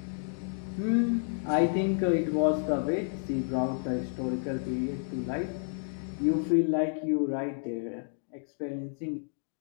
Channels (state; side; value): silent; right; digital silence